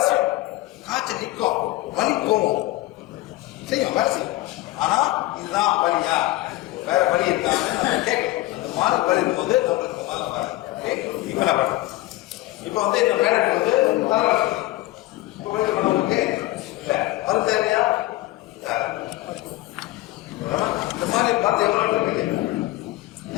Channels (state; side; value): quieter; right; 18.1 dB